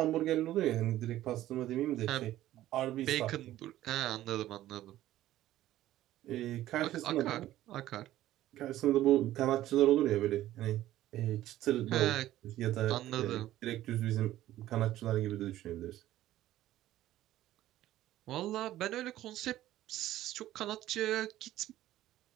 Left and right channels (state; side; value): quieter; left; 14.1 dB